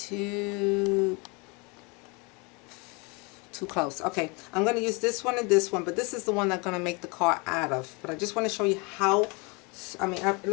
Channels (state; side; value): quieter; right; 29.7 dB